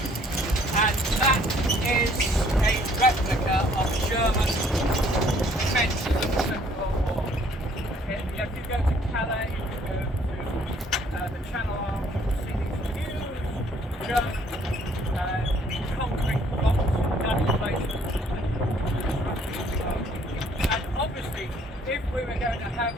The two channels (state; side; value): normal; both; correlation 0.61